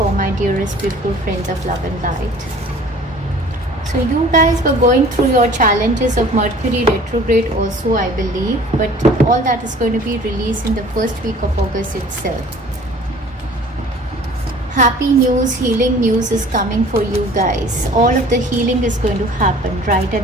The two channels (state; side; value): normal; both; correlation 0.49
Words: my dearest beautiful friends of love and light. So you guys were going through your challenges of Mercury retrograde also, I believe, but all that is going to be released in the first week of August itself. Happy news, healing news is coming for you guys. All of the healing is going to happen right